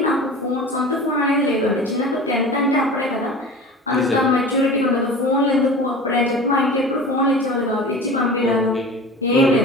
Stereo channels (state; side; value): normal; both; correlation 0.36